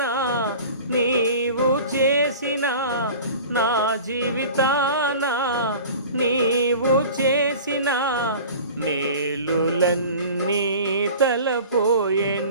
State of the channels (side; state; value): both; inverted; correlation -0.40